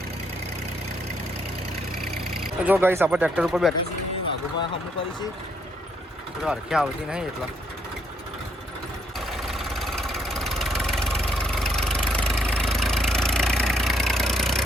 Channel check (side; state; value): both; normal; correlation 0.71